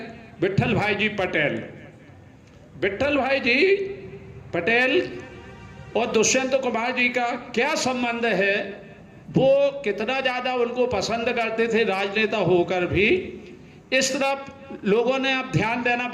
विट्ठल भाई जी पटेल। विट्ठल भाई जी पटेल और दुष्यंत कुमार जी का क्या संबंध है, वो कितना ज़्यादा उनको पसंद करते थे राजनेता होकर भी, इस तरफ लोगों ने अब ध्यान देना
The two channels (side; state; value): both; identical; correlation 1.00